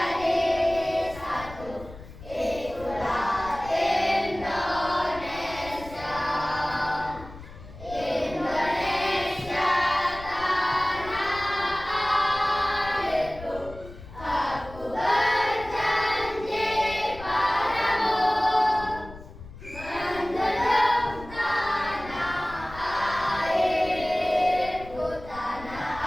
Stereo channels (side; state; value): left; noise; rumble, 16 dB below the sound